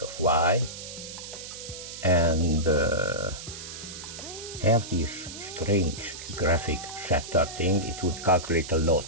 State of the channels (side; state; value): right; noise; hiss, 11 dB below the sound